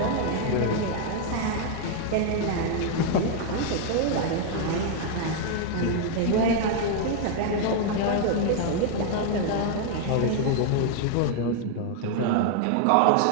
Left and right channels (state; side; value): different; both; correlation 0.00